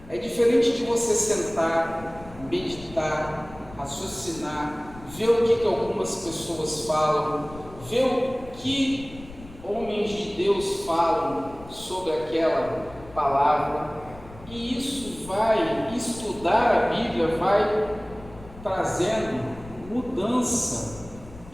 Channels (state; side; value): noise; left; rumble, 18 dB below the sound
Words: É diferente de você sentar, meditar, raciocinar, ver o que algumas pessoas falam, ver o que homens de Deus falam sobre aquela palavra. E isso estudar a Bíblia vai trazendo mudança